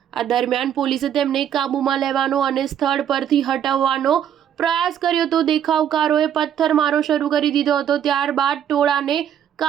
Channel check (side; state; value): left; quieter; 9.6 dB